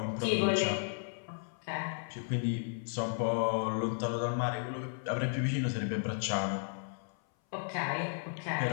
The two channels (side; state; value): right; silent; 55 dB below the other